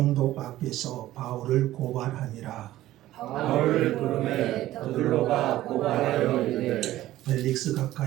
앞에서 바울을 고발하니라. 바울을 부르매 도둘로가 고발하여 이르되 벨릭스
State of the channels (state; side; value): quieter; left; 14.9 dB